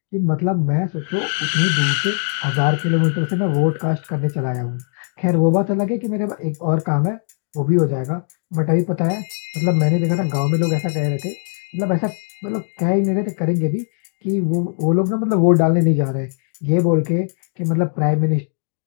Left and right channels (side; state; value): right; silent; digital silence